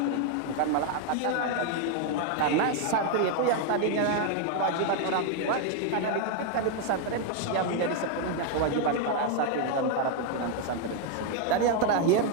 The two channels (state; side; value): different; both; correlation 0.01